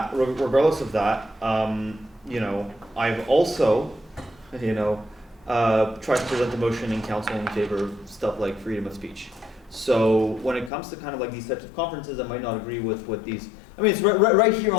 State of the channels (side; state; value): right; drops out; at 10.7 s